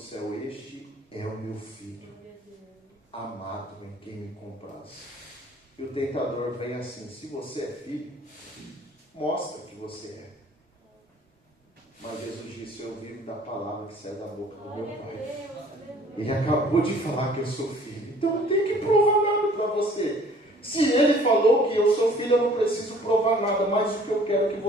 este é o meu filho, amado, em quem me compraz. E o tentador vem assim: se você é filho, mostra que você é. Mas Jesus disse: eu vivo da palavra que sai da boca do meu Pai. Ele acabou de falar que eu sou filho, então não tem que provar nada para você. Se ele falou que eu sou filho, eu não preciso provar nada. Mas o que eu quero que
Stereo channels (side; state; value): both; normal; correlation 0.54